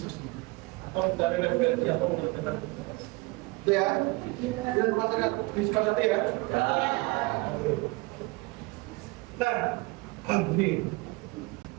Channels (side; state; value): left; quieter; 24.7 dB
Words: atau dari referensi atau mengerjakan itu ya. Dan masyarakat disepakati ya. Nah, ini